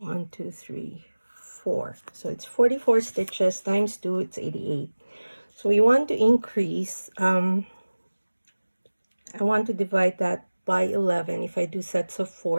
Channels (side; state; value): both; inverted; correlation -1.00